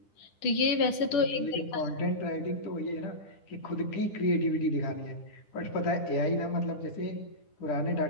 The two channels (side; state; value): right; late; 9.9 ms